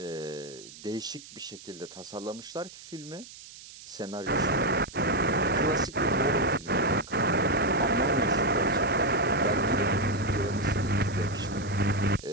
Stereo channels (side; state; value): right; noise; hiss, 17 dB below the sound